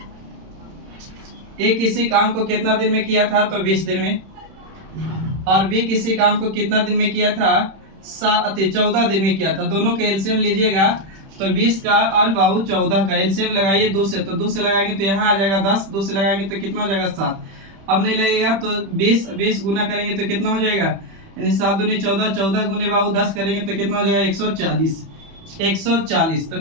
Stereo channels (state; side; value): late; left; 31 ms